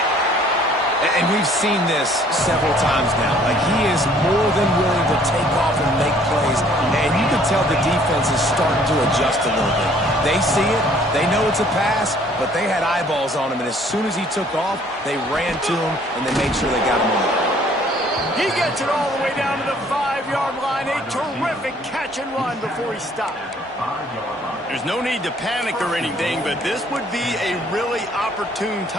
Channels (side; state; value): both; normal; correlation 0.59